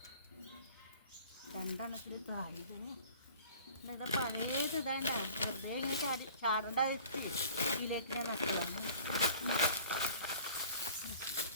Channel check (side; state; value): both; inverted; correlation -0.47